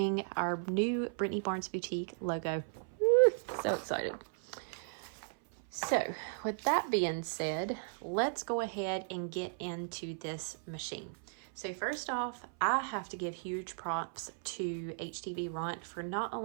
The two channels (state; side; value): silent; left; 54 dB below the other